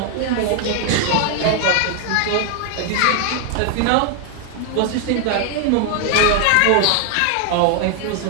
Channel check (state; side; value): different; both; correlation 0.00